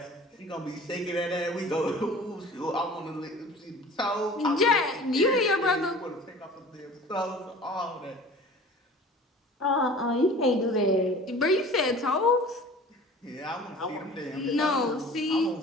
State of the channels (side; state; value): both; normal; correlation 0.43